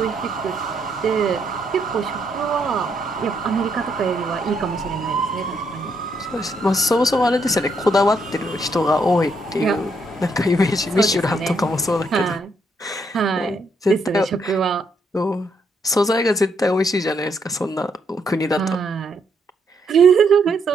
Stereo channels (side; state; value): both; normal; correlation 0.75